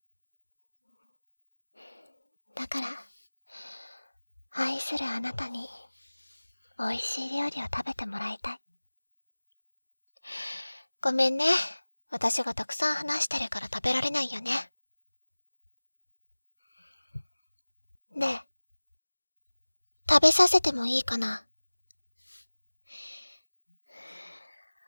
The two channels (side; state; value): both; inverted; correlation -1.00